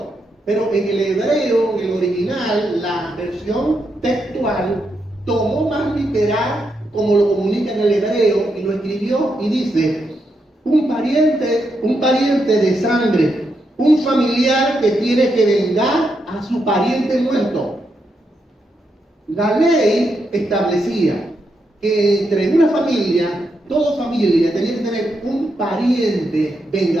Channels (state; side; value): normal; both; correlation 0.82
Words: Pero en el hebreo, en el original, la versión textual tomó más literal como lo comunica en el hebreo y lo escribió y dice, un pariente de sangre, un familiar que tiene que vengar a su pariente muerto. La ley establecía que entre una familia, toda familia tenía que tener un pariente